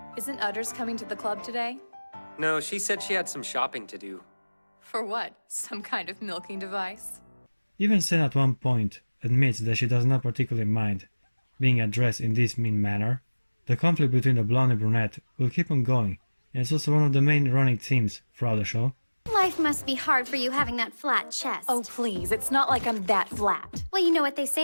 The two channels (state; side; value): inverted; both; correlation -1.00